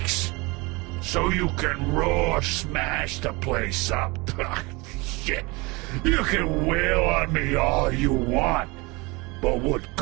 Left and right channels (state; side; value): quieter; left; 25.5 dB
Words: So you can raw smash the place up. Shit, you can wail on me all you want, but what